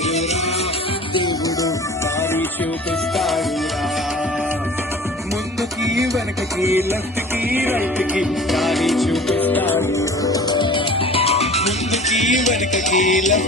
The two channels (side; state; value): both; normal; correlation 0.43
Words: దేవుడు దారి చూపిస్తాడురా. ముందుకి వెనకకి లెఫ్ట్ కి రైట్ కి దారి చూపిస్తాడు, ముందుకి వెనకకి